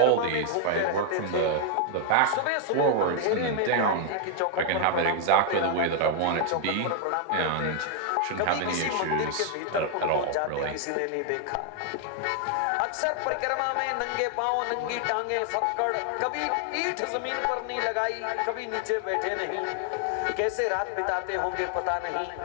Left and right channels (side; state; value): both; different; correlation 0.00